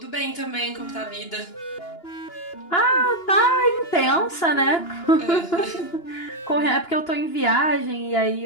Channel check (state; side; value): late; right; 2.9 ms